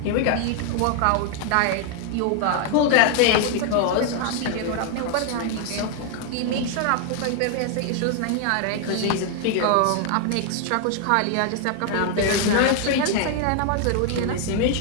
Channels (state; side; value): different; both; correlation 0.00